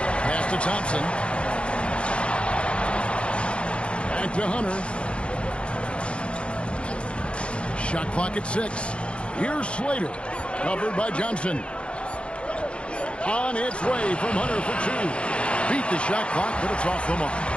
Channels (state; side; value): late; right; 0.058 ms